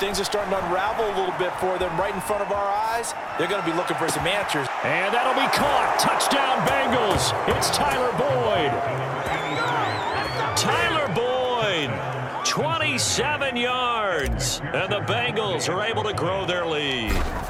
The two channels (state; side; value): identical; both; correlation 1.00